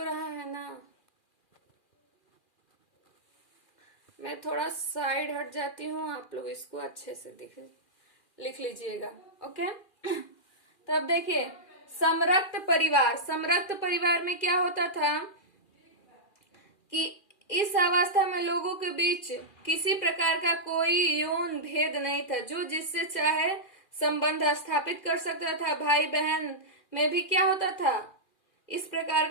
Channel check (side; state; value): right; late; 2.4 ms